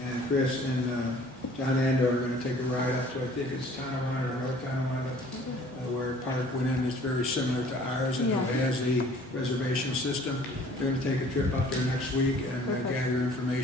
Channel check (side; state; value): both; normal; correlation 0.53